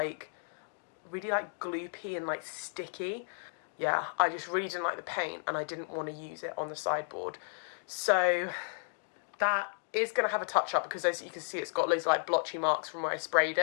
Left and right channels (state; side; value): silent; right; digital silence